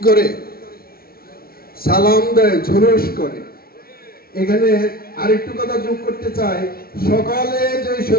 করে সালাম দেয়, ঝুরুস করে। এখানে আরেকটু কথা যোগ করতে চাই, সকালে যে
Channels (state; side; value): late; right; 0.44 ms